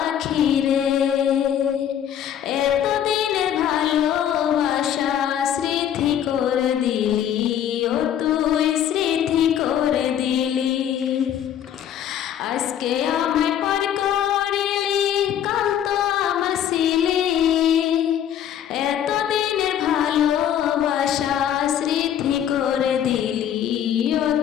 রে, এতদিনের ভালোবাসা স্মৃতি করে দিলি, ও তুই স্মৃতি করে দিলি। আজকে আমায় পর করলি কাল তো আমার ছিলি। এতদিনের ভালোবাসা স্মৃতি করে দিলি, ও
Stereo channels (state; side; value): quieter; right; 10.0 dB